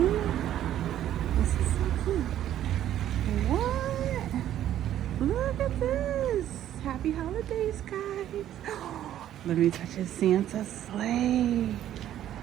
This is so cute. What? Look at this. Happy holidays, guys. Let me touch his Santa sleigh.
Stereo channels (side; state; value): left; quieter; 11.7 dB